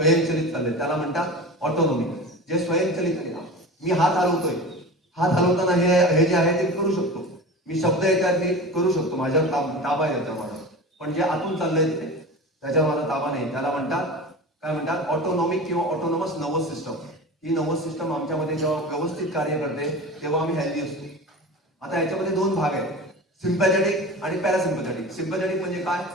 चाललंय, त्याला म्हणतात ऑटोनॉमिक. जे स्वयंचलित आहे, मी हात हलवतोय, हात हलवताना हे जे आहे ते करू शकतो, मी शब्द येतात ते करू शकतो, माझ्यावर ताबा येतो माझा. पण जे आतून चाललंय ते त्याच्यावर माझा ताबा नाही, त्याला म्हणतात काय म्हणतात ऑटोनॉमिक किंवा ऑटोनॉमस नर्वस सिस्टम. ही नर्वस सिस्टम आमच्यामध्ये जेव्हा व्यवस्थित कार्य करते तेव्हा आम्ही हेल्दी असतो. आता याच्यामध्ये दोन भाग आहेत, सिम्पॅथेटिक आणि पॅरासिम्पॅथेटिक. सिम्पॅथेटिक म्हणजे काय,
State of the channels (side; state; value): both; normal; correlation 0.32